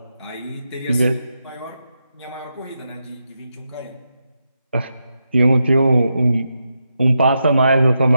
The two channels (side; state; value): both; inverted; correlation -0.86